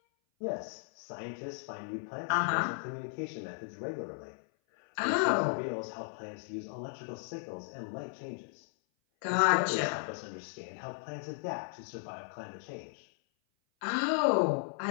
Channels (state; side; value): silent; right; 54 dB below the other